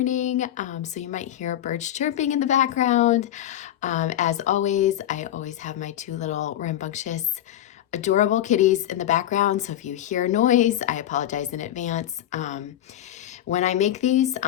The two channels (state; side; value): quieter; right; 11.9 dB